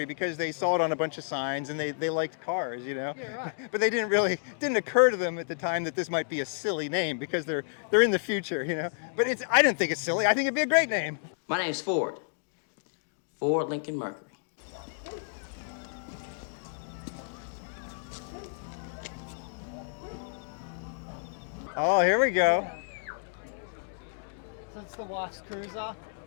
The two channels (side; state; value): right; silent; digital silence